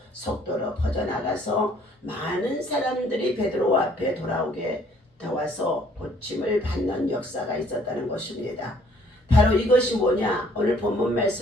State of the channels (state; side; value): normal; both; correlation 0.61